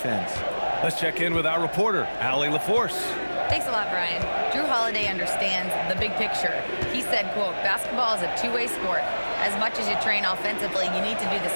Let's check in with our reporter, Allie LaForce. Thanks a lot, Brian. Jrue Holiday understands the big picture. He said, quote, basketball is a two-way sport. As much as you train offensively, you need to do the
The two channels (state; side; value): inverted; both; correlation -1.00